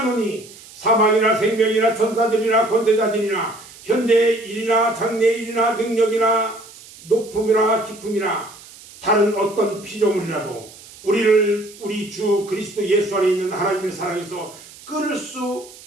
사망이나 생명이나 천사들이나 권세자들이나 현재의 일이나 장래의 일이나 능력이나 높음이나 깊음이나 다른 어떤 피조물이라도 우리를 우리 주 그리스도 예수 안에 있는 하나님의 사랑에서 끊을 수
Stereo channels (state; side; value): noise; right; hiss, 20 dB below the sound